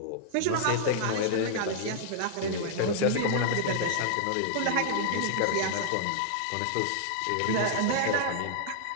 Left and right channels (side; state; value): both; different; correlation -0.01